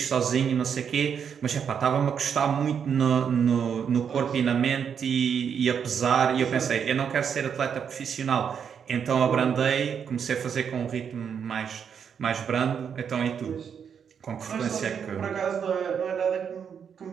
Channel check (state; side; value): quieter; left; 7.4 dB